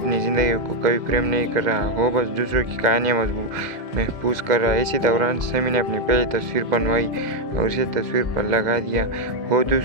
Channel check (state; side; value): late; left; 2.0 ms